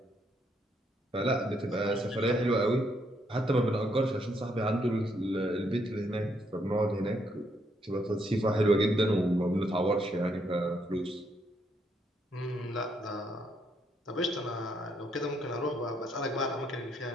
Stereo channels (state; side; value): normal; both; correlation 0.74